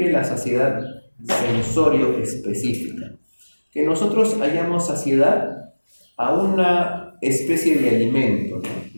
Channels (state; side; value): inverted; both; correlation -1.00